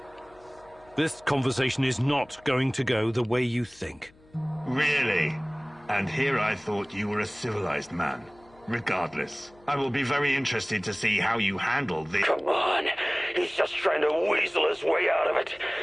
This conversation is not going to go the way you think. Really? And here I thought you were a civilized man. Regardless, I will be very interested to see how you handle this. Come on. He's just trying to weasel his way out of it.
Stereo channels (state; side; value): noise; left; hum, 28 dB below the sound